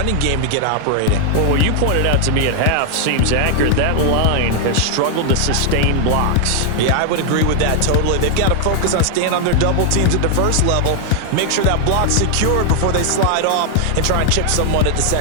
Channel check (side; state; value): both; different; correlation 0.00